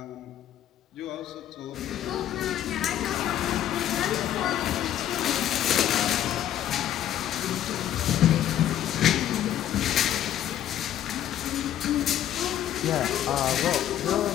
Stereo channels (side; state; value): right; quieter; 11.3 dB